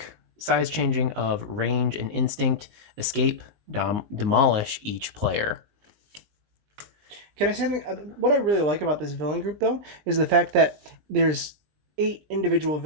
Size changing of range and instinct. Escape. Demolish each player. Can I say something? What I really like about this villain group, though, is the fact that there's 8 individual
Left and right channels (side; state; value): left; late; 19 ms